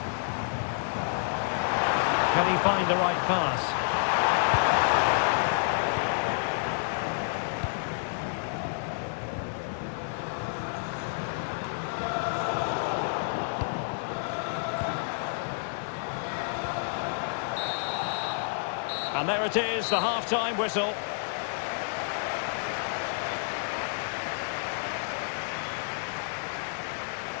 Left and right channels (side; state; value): right; silent; 57 dB below the other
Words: Can he find the right pass? And there it is, the half-time whistle.